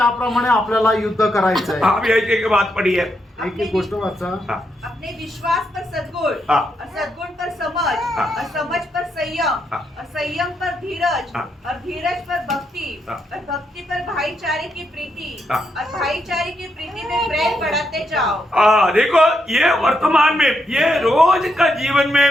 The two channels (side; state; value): both; normal; correlation 0.80